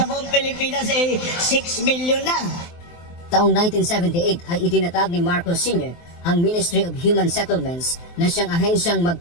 buong Pilipinas ay 6 million na. Taong 1978 ay itinatag ni Marcos Sr. ang Ministry of Human Settlements na siyang ahensyang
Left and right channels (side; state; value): right; late; 23 ms